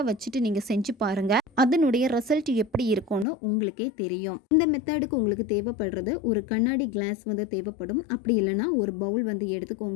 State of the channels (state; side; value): drops out; right; at 3.2 s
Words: வச்சுட்டு நீங்கள் செஞ்சு பாருங்கள். அதனுடைய ரிசல்ட் எப்படி இருக்கும்னு உங்களுக்கே தெரியும். இந்த மெத்தடுக்கு உங்களுக்கு தேவைப்படுறது ஒரு கண்ணாடி கிளாஸ் தேவைப்படும். அப்படி இல்லைன்னா ஒரு பவுல்